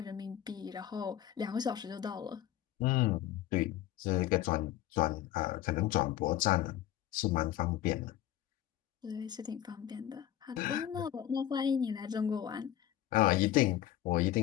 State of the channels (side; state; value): right; quieter; 12.2 dB